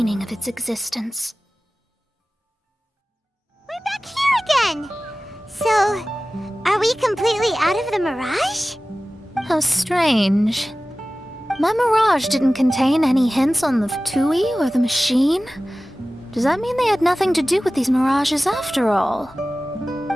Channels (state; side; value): normal; both; correlation 0.96